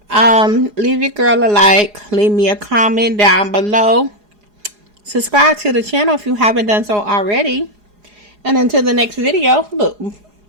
Leave your girl a like. Leave me a comment down below. Subscribe to the channel if you haven't done so already. And until the next video, look,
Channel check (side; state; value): left; late; 4.8 ms